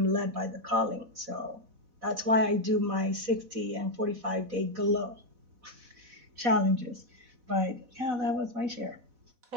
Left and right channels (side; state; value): left; late; 4.1 ms